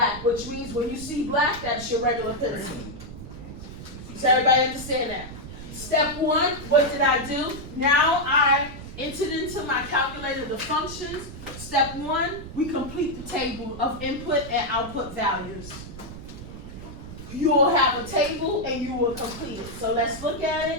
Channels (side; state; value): right; noise; rumble, 12 dB below the sound